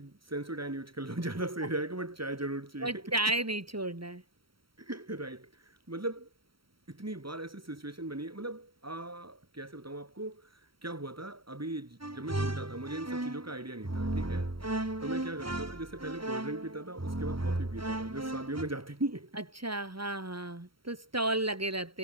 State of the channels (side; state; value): left; late; 0.74 ms